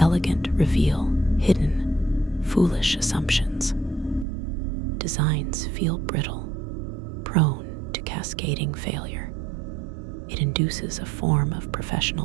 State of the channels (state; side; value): drops out; left; at 4.2 s